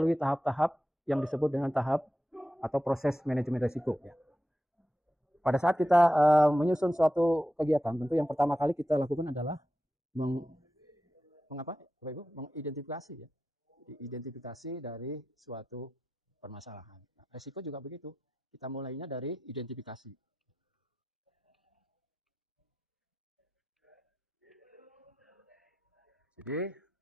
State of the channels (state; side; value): normal; both; correlation 0.91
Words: tahap-tahap yang disebut dengan tahap atau proses manajemen risiko, ya. Pada saat kita menyusun suatu kegiatan, tentu yang pertama kali kita lakukan adalah mengidentifikasi, ya, identifikasi dari suatu permasalahan. Nah, risiko juga begitu. Kita mulainya dari identifikasi. Jadi